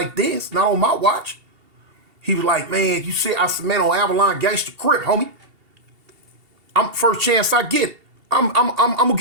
this. Not on my watch. He was like, man, you see, I said, man, on Avalon Gangster Crip, homie. I'm first chance I get. I'm gonna get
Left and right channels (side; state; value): left; late; 2.7 ms